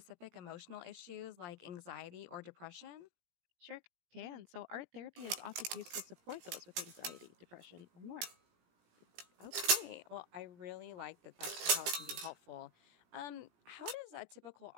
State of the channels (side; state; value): left; late; 17 ms